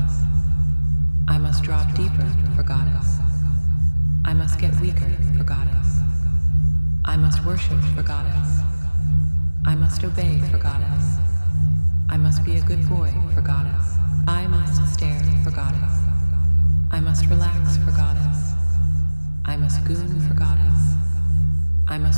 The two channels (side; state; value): both; inverted; correlation -1.00